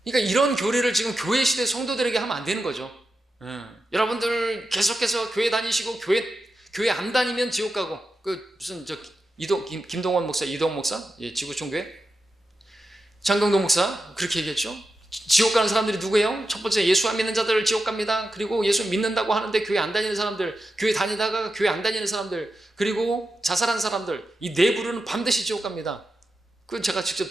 그러니까 이런 교리를 지금 교회 시대 성도들에게 하면 안 되는 거죠. 여러분들 계속해서 교회 다니시고 교회 안 다니면 지옥 가고, 무슨 김동원 목사, 이동 목사, 지구촌교회 장경동 목사 그렇게 얘기했죠. 지옥 가는 사람들이 누구예요? 첫 번째 예수 안 믿는 자들 지옥 갑니다. 그리고 예수 믿는다고 하는데 교회 안 다니는 사람들, 교회 다니다가 교회 안 다니는 사람들, 그리고 자살한 사람들, 이 네 부류는 반드시 지옥 갑니다. 그건 제가 직접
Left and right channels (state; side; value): normal; both; correlation 0.89